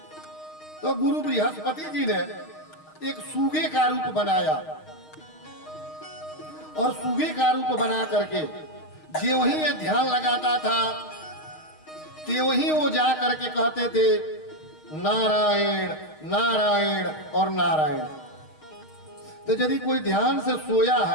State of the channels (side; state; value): right; late; 6.4 ms